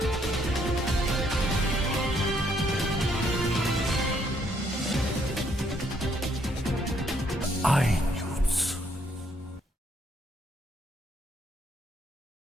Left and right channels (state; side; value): normal; both; correlation 0.70